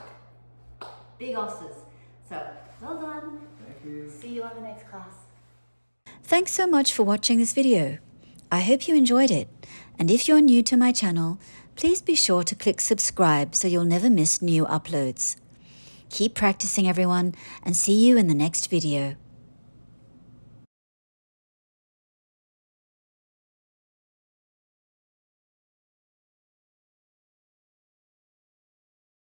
big osses. So well done. Thank you. See you on the next class. Thanks so much for watching this video. I hope you enjoyed it. And if you're new to my channel, please be sure to click subscribe so you'll never miss new uploads. Keep practicing, everyone, and see you in the next video.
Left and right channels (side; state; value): both; inverted; correlation -1.00